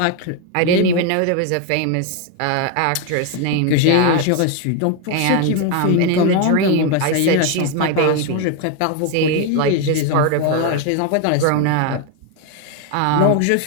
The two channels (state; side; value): different; both; correlation 0.01